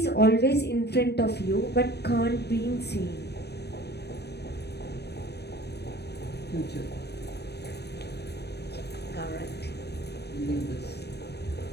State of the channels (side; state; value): right; late; 0.48 ms